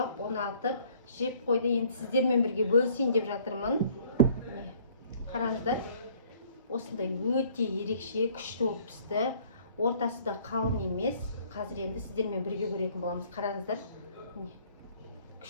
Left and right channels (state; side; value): inverted; both; correlation -0.58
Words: ұнатып, жеп қойды. Енді сіздермен бірге бөлісейін деп жатырмын. Қараңыздар, осындай өте ерекше, күшті болып пісті. Ортасы да қалың емес. Қазір енді сіздермен бірге көретін боламыз. Қараңыздар,